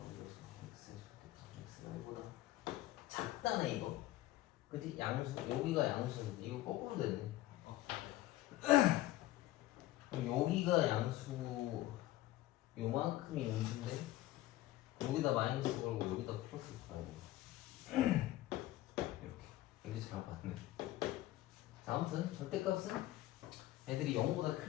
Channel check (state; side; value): quieter; right; 15.7 dB